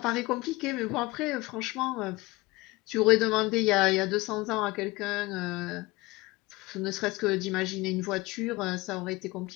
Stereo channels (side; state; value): right; quieter; 21.8 dB